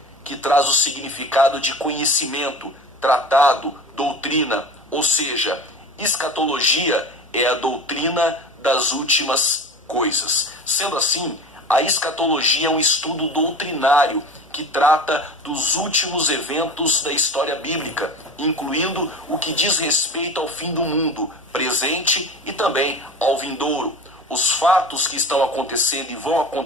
que traz o significado de conhecimento, tratado, doutrina. Ou seja, escatologia é a doutrina das últimas coisas. Sendo assim, a escatologia é um estudo doutrinário que trata dos últimos eventos da história bíblica, incluindo o que diz respeito ao fim do mundo, presente e também ao vindouro. Os fatos que estão acontecendo e vão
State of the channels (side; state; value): both; normal; correlation 0.34